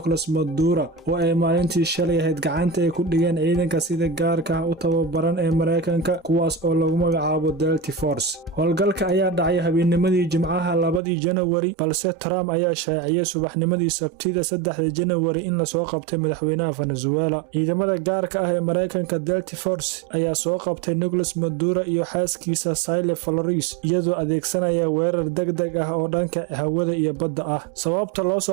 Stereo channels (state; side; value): drops out; left; at 11.0 s